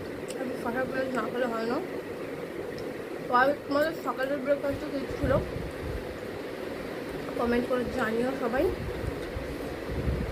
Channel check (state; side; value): identical; both; correlation 1.00